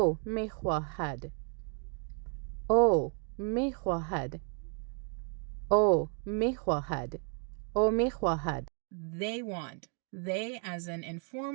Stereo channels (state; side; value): quieter; left; 39.1 dB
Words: میخواهد. Oh, میخواهد. Oh, میخواهد. Oh, میخواهد. They want. They as an